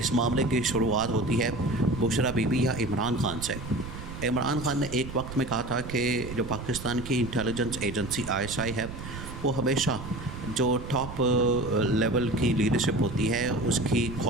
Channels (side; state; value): right; noise; rumble, 10 dB below the sound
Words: معاملے کی شروعات ہوتی ہے بشریٰ بی بی یا عمران خان سے۔ عمران خان نے ایک وقت میں کہا تھا کہ جو پاکستان کی انٹیلیجنس ایجنسی آئی ایس آئی ہے وہ ہمیشہ جو ٹاپ لیول کی لیڈرشپ ہوتی ہے اس کی